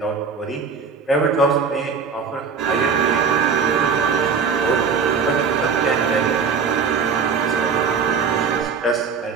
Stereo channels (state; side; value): quieter; left; 5.8 dB